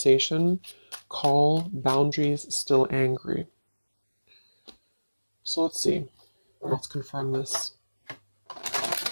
call, boundaries, still angry. So let's see. Let's confirm this.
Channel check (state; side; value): inverted; both; correlation -1.00